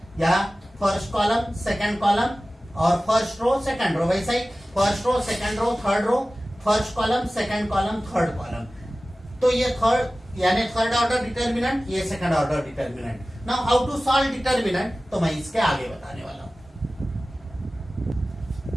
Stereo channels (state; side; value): normal; both; correlation 0.97